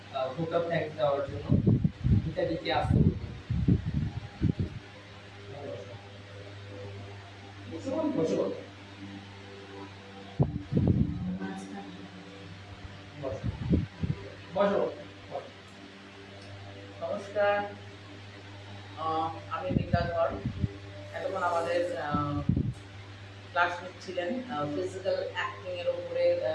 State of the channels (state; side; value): identical; both; correlation 1.00